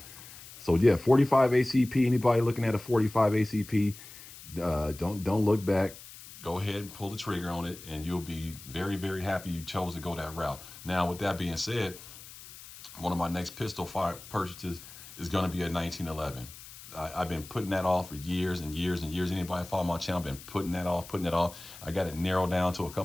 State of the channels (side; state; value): left; noise; hiss, 16 dB below the sound